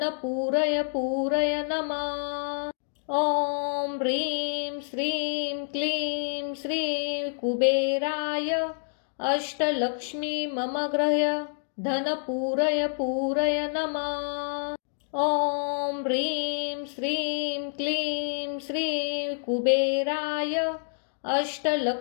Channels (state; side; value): silent; right; digital silence